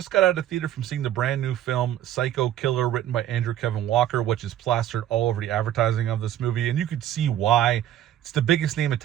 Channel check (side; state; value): left; quieter; 11.8 dB